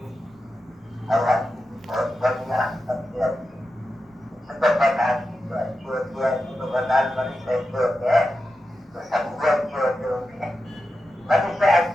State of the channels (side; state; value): both; normal; correlation 0.90